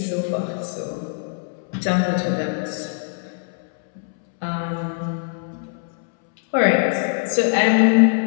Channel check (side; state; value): right; silent; 64 dB below the other